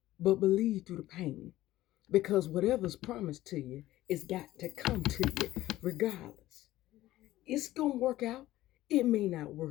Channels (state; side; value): quieter; right; 15.6 dB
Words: but believe through the pain. Because whatever's promised to you, it's got to come to you regardless. It's going to work out. It may not